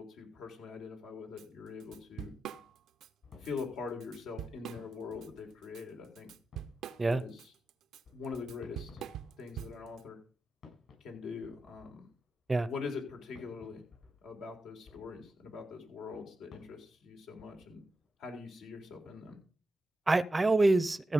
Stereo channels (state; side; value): normal; both; correlation 0.90